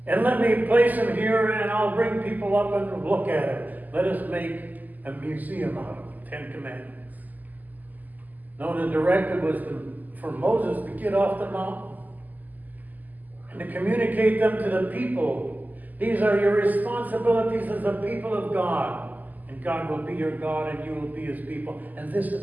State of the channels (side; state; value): left; late; 0.082 ms